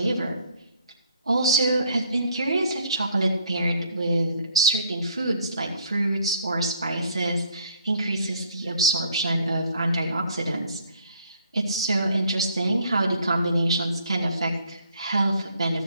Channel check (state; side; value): inverted; both; correlation -0.63